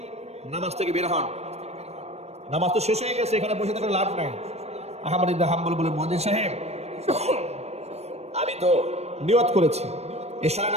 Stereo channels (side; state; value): left; late; 0.31 ms